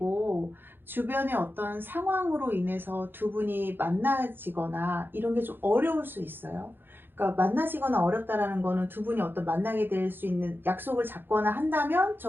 주변의 어떤 상황으로 인해서 두 분이 만나지거나 이런 게 좀 어려울 수 있어요. 그러니까 만나지거나 어렵다라는 거는 두 분이 어떤 만나게 될 수 있는 약속을 잡거나 한다면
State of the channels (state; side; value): late; left; 0.10 ms